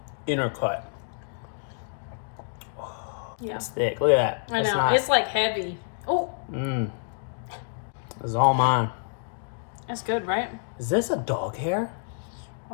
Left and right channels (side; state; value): right; silent; digital silence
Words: inner cut. Yeah. It's thick. Look at that. I know. It's like heavy. Oh. This is all mine. That's good, right? Is this a dog hair?